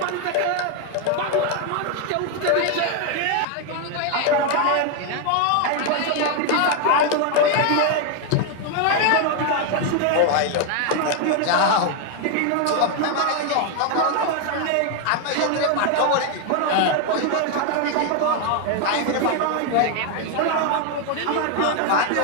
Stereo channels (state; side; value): different; both; correlation 0.01